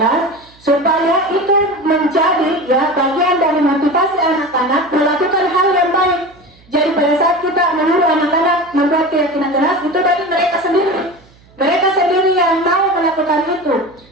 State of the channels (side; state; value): right; noise; hum, 29 dB below the sound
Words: Supaya itu menjadi, ya, bagian dari motivasi anak-anak melakukan hal yang baik. Jadi pada saat kita menyuruh anak-anak membuat keyakinan kelas, itu dari mereka sendiri. Mereka sendiri yang mau melakukan itu.